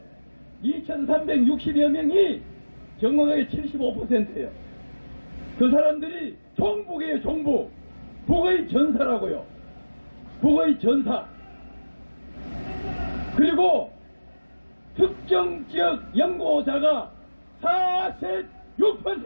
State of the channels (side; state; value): both; inverted; correlation -1.00